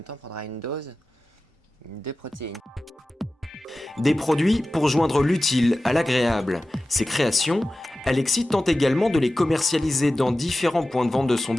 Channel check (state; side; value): normal; both; correlation 0.95